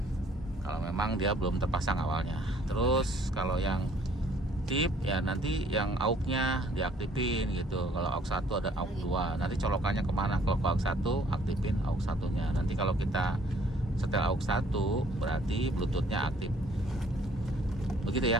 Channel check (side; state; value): both; normal; correlation 0.59